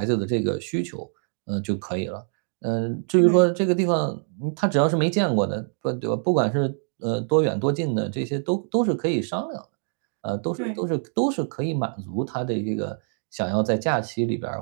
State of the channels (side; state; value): left; silent; 60 dB below the other